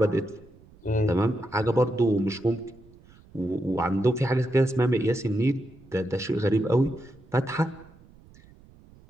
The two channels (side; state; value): right; noise; rumble, 25 dB below the sound